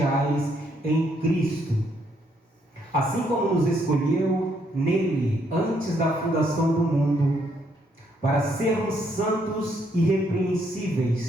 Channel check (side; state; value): both; normal; correlation 0.72